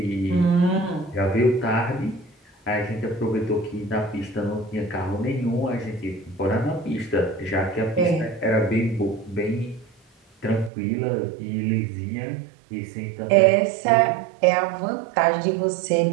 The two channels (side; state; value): left; drops out; at 10.7 s